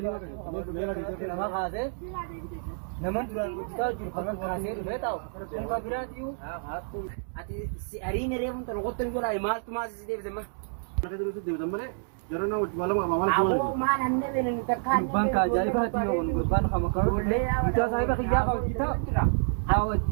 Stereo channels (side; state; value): left; silent; digital silence